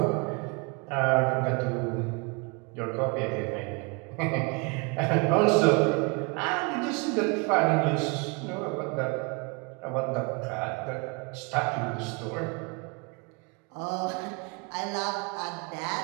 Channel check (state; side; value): quieter; left; 30.5 dB